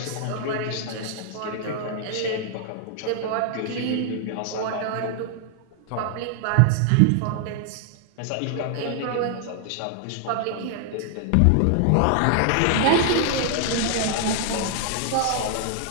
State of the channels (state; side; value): different; both; correlation 0.00